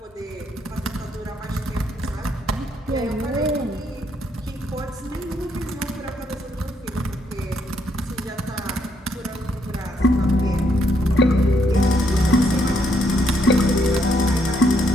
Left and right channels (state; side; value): normal; both; correlation 0.73